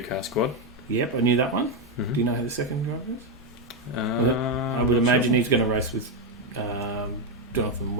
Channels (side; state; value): both; normal; correlation 0.05